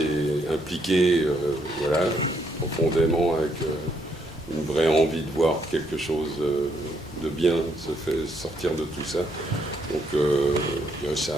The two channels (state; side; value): normal; both; correlation 0.73